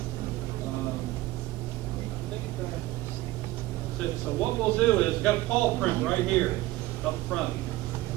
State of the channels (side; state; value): left; quieter; 17.5 dB